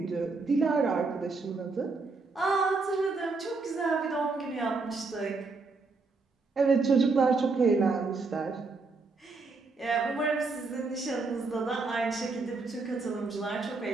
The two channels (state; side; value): quieter; left; 4.0 dB